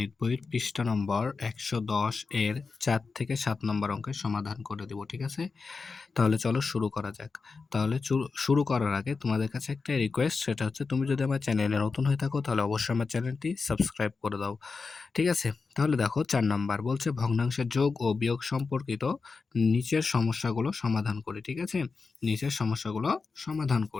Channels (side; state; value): right; quieter; 4.5 dB